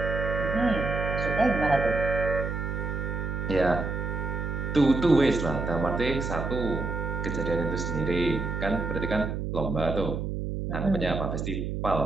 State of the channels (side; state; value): right; noise; hum, 3 dB below the sound